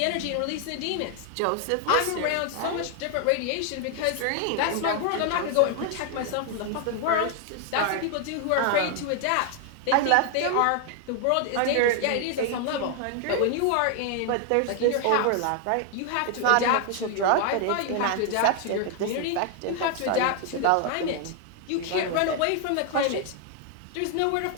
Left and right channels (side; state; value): both; different; correlation 0.00